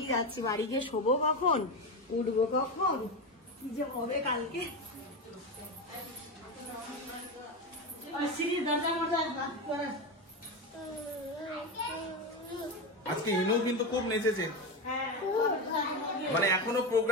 যাচ্ছি। বাড়ি গিয়ে শোবো কখন, উঠবো কখন, কি যে হবে কালকে। আজকে ইনু কিন্তু খুব নেচেছে, মানে এখনো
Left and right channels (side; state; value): both; normal; correlation 0.16